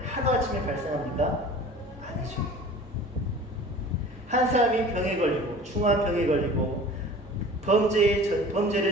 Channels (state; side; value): normal; both; correlation 0.42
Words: 하루아침에 발생합니까? 아니죠. 한 사람이 병에 걸리고, 중한 병에 걸리고